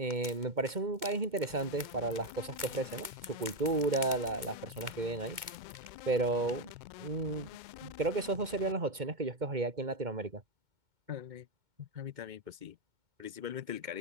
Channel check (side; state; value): left; late; 2.2 ms